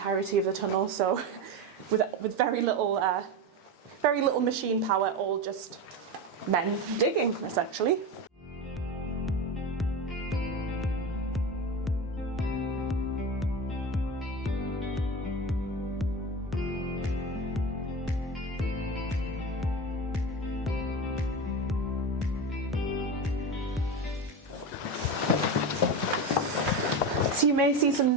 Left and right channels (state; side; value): normal; both; correlation 0.22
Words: of the tunnel. So with very little machine power, all just men digging, essentially. So you may see